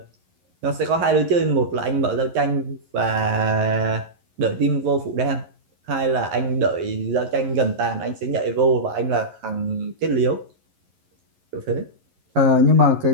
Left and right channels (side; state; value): left; late; 11 ms